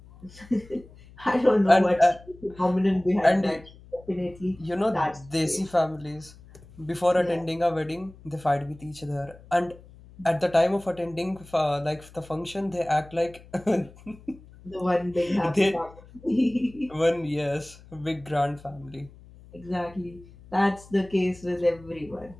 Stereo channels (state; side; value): noise; left; hum, 22 dB below the sound